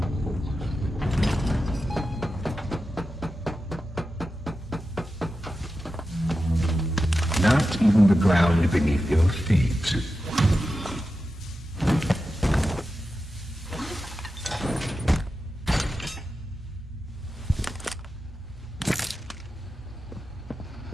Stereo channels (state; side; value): normal; both; correlation 0.91